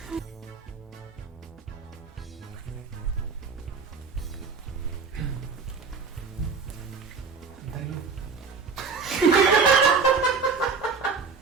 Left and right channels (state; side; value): quieter; left; 5.1 dB